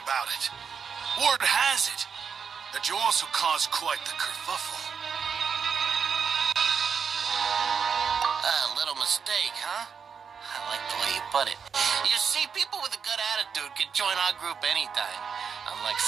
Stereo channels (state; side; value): quieter; left; 6.4 dB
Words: about it. Word has it that you also caused quite the kerfuffle. A little mistake, huh? I like the way you put it. You see, people with a good attitude can join our group anytime, unlike